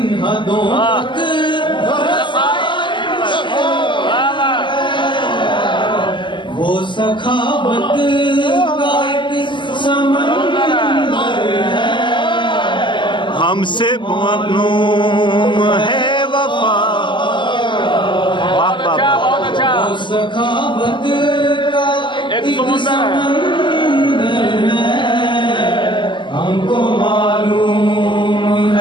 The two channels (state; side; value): late; right; 0.23 ms